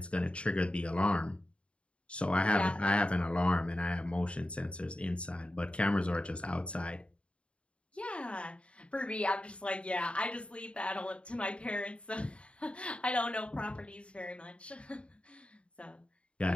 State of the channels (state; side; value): late; right; 0.059 ms